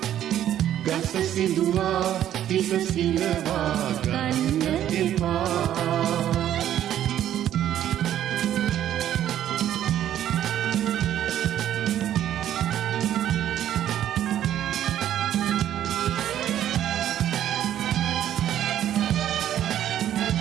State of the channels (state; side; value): quieter; left; 11.3 dB